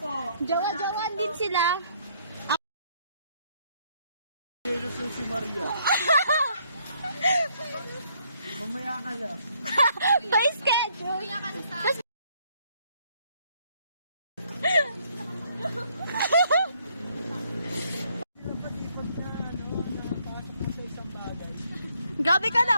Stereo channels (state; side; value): inverted; both; correlation -0.68